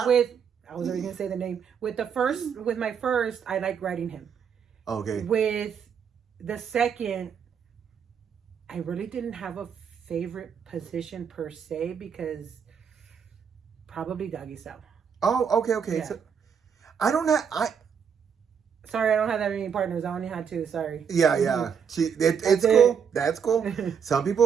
was already gonna say the name. With my first, I like riding him. Okay. With the second, I really didn't have a favorite position per se because probably doggy style. Oh, okay. Yeah. So Sorry, I don't have that many partners. I only had 2. Sorry. Yeah. It's cool. That's cool. Some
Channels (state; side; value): quieter; left; 7.2 dB